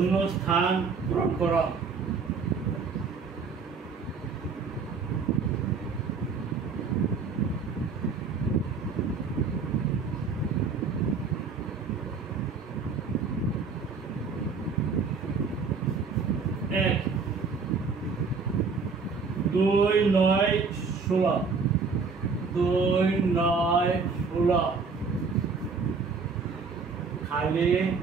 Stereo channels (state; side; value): quieter; left; 4.9 dB